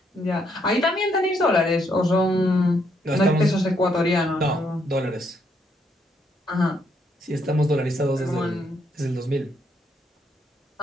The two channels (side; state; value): both; normal; correlation 0.73